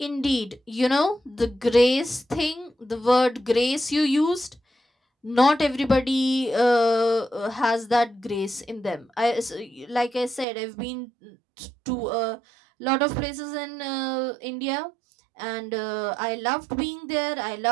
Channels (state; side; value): drops out; left; at 10.5 s